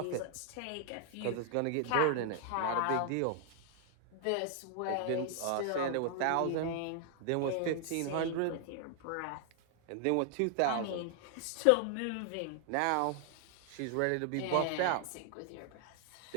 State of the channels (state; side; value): different; both; correlation 0.00